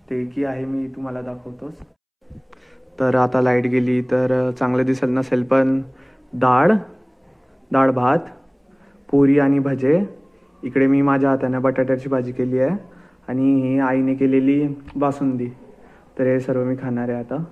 ते की आहे मी तुम्हाला दाखवतोच. तर आता लाईट गेली तर चांगलं दिसत नसेल, पण डाळ भात, पुरी आणि भजे. इकडे मी माझ्या हाताने बटाट्याची भाजी केली आहे आणि ही आईने केलेली बासुंदी. तर हे सर्व मी खाणार आहे आता.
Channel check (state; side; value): identical; both; correlation 1.00